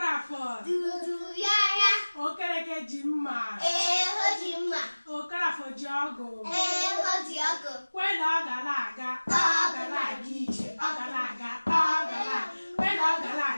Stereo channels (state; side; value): inverted; both; correlation -1.00